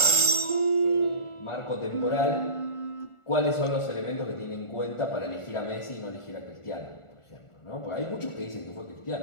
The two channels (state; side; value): late; right; 1.4 ms